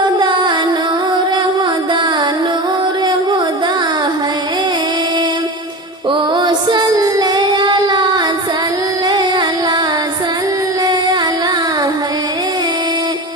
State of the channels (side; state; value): both; normal; correlation 0.27